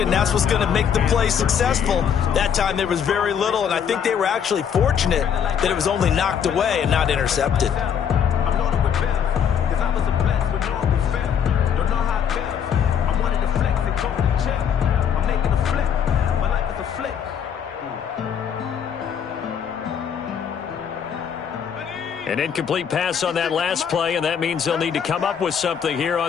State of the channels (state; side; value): quieter; right; 7.9 dB